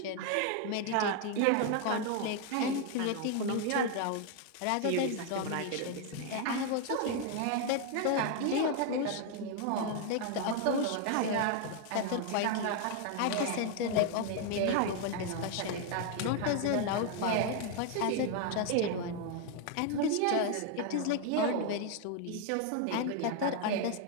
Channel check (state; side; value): different; both; correlation 0.01